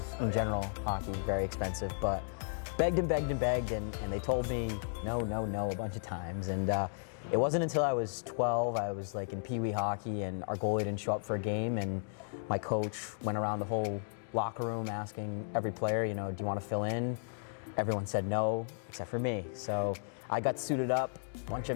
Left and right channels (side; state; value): right; silent; digital silence